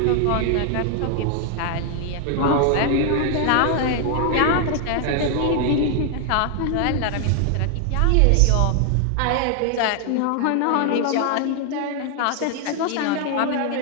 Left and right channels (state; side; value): different; both; correlation 0.00